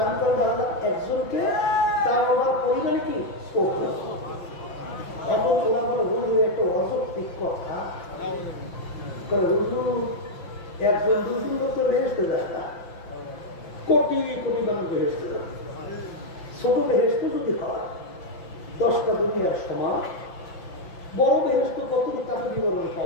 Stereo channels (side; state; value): right; late; 5.9 ms